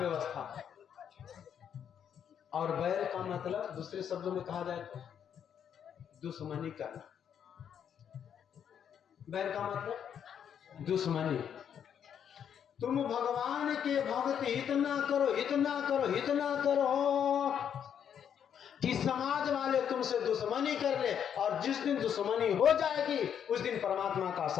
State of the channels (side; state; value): right; quieter; 8.5 dB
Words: और बैर का मतलब दूसरे शब्दों में कहा जाए तो दुश्मनी करना। बैर का मतलब दुश्मनी। तुम भगवान के भक्ति इतना करो, इतना करो, इतना करो कि समाज वाले तुमसे दुश्मनी कर ले। और जिस दिन दुश्मनी हो जाएगी उस दिन परमात्मा का